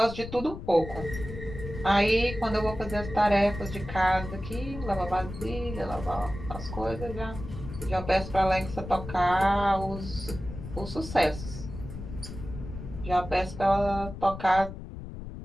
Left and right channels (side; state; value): left; noise; rumble, 10 dB below the sound